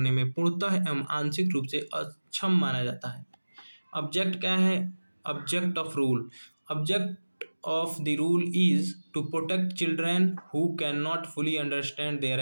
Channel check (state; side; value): inverted; both; correlation -1.00